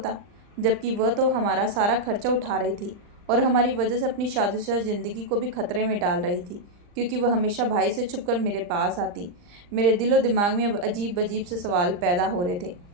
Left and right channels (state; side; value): late; left; 39 ms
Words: जबकि वह तो हमारा सारा खर्चा उठा रही थी और हमारी वजह से अपनी शादीशुदा जिंदगी को भी खतरे में डाल रही थी, क्योंकि वह हमेशा भाई से छुपकर मेरे पास आती। मेरे दिलो दिमाग में अब अजीब अजीब से सवाल पैदा हो रहे थे।